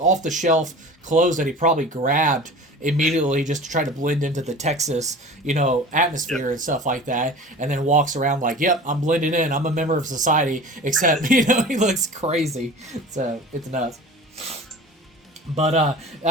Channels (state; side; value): normal; both; correlation 0.38